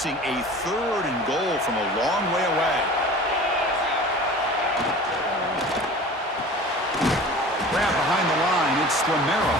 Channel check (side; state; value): both; normal; correlation 0.40